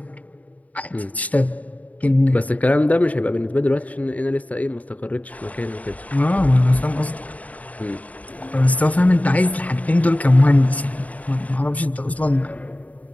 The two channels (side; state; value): right; late; 0.071 ms